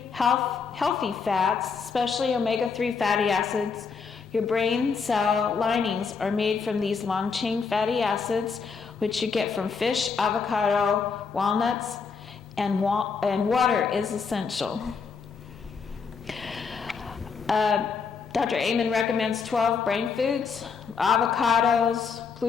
healthy fats, especially omega-3 fatty acids. Your brain cell linings are made from these long-chain fatty acids, which you get from fish, avocado, walnuts, and water is essential. Dr. Amen recommends 12 brain foods: avocados,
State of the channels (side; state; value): right; quieter; 5.5 dB